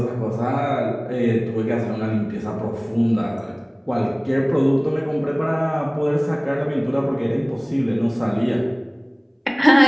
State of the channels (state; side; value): identical; both; correlation 1.00